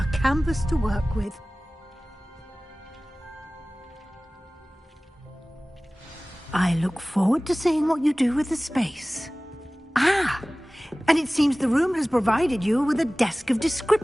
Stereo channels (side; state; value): both; normal; correlation 0.98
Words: canvas to work with. I look forward to seeing what you do with the space. Ah, and it seems the room has provided you with a desk of